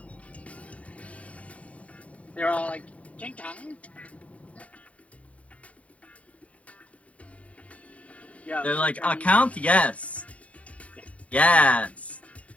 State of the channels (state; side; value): late; right; 0.067 ms